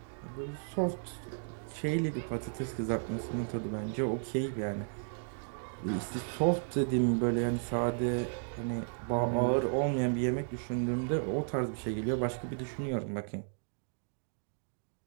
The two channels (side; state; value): left; silent; digital silence